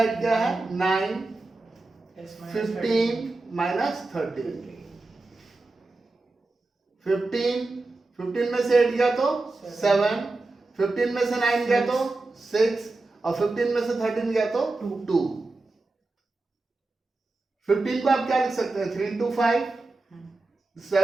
क्या है, 9, 15 माइनस 13, 15 में से 8 गया तो 7, 15 में से 9 गया तो 6, और 15 में से 13 गया तो 2। 15 को आप क्या लिख सकते हैं, 3 into 5,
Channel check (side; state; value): left; quieter; 3.3 dB